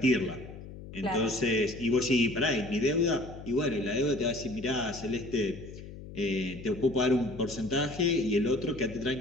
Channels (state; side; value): noise; left; hum, 14 dB below the sound